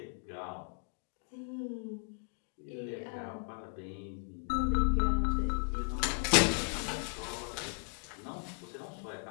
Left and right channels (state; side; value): quieter; right; 37.2 dB